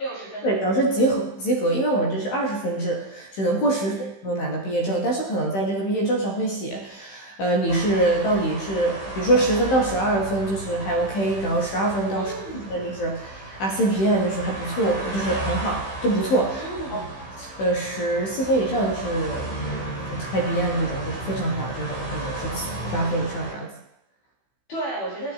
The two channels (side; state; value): right; late; 15 ms